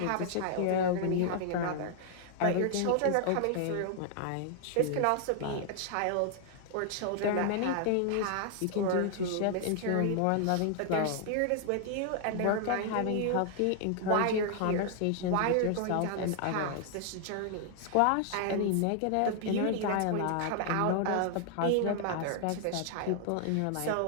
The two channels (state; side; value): different; both; correlation 0.00